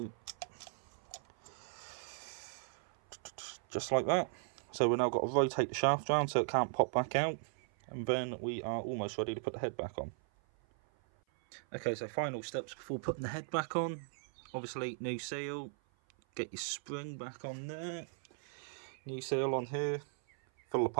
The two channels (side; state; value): left; silent; 53 dB below the other